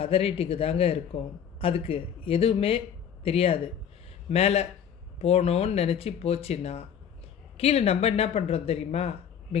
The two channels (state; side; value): quieter; right; 8.4 dB